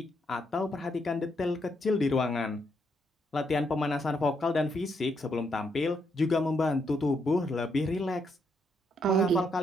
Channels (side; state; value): both; normal; correlation 0.77